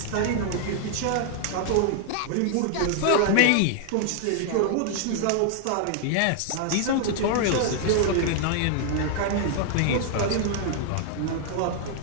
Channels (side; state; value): both; different; correlation 0.00